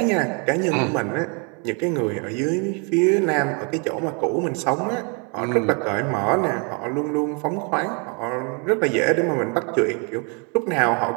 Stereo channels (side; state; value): left; quieter; 35.4 dB